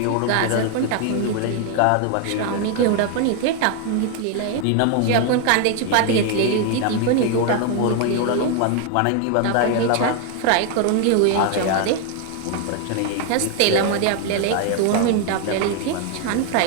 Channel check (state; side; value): different; both; correlation 0.00